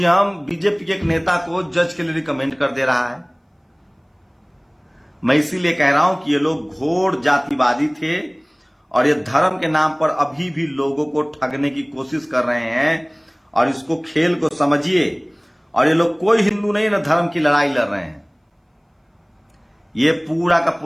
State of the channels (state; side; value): identical; both; correlation 1.00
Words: बीजेपी के एक नेता को जज के लिए रिकमेंड कर दे रहा है। मैं इसीलिए कह रहा हूं कि ये लोग घोर जातिवादी थे और ये धर्म के नाम पर अभी भी लोगों को ठगने की कोशिश कर रहे हैं, और इसको खेल को समझिए। और ये लोग कोई हिंदू नहीं ना धर्म की लड़ाई लड़ रहे हैं, ये पूरा का